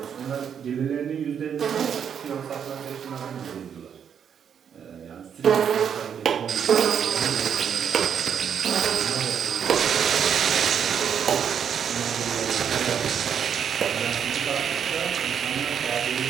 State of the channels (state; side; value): quieter; left; 8.0 dB